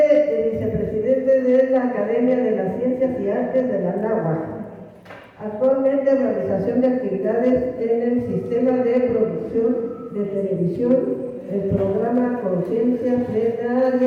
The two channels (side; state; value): both; identical; correlation 1.00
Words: vicepresidente de la Academia de las Ciencias y Artes de la Anáhuac. Actualmente realización de actividades en el sistema de producción de televisión, el programa Conciencia